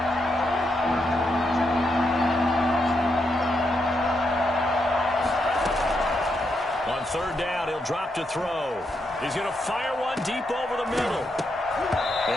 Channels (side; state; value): both; normal; correlation 0.81